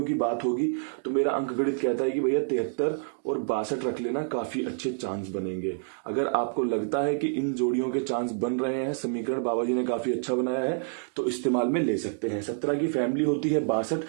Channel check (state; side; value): silent; left; digital silence